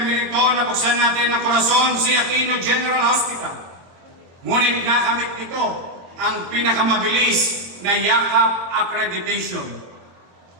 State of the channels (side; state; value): left; late; 23 ms